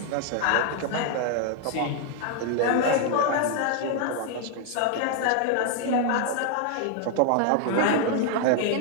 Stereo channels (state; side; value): different; both; correlation 0.00